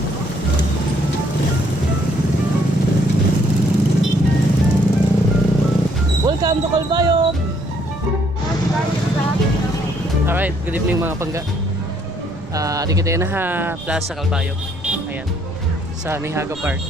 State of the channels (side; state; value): right; noise; rumble, 19 dB below the sound